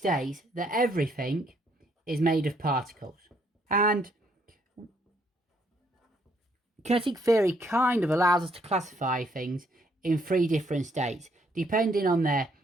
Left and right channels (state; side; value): normal; both; correlation 0.69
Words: that everything is made of particles, and kinetic theory kind of allows us to classify things in 3 different states, depending on their